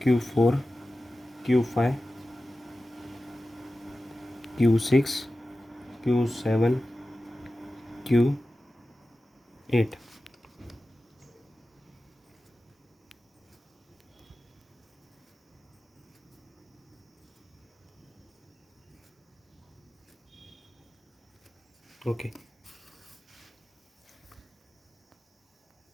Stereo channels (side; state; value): both; normal; correlation 0.94